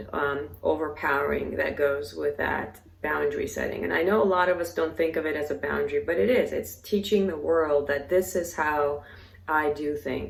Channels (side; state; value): both; identical; correlation 1.00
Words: overpowering that goes with that boundary setting. And I know a lot of us don't think of it as a boundary, but it is. It's teaching the world that this is how I do